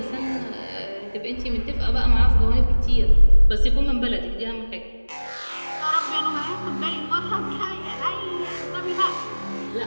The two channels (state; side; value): inverted; both; correlation -1.00